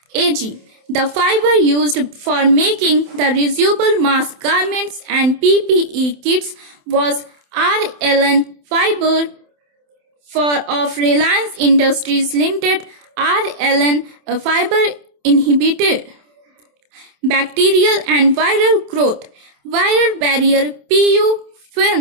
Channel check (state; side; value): late; left; 27 ms